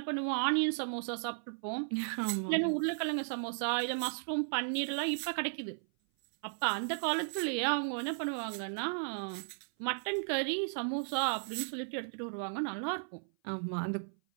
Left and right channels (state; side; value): silent; left; 54 dB below the other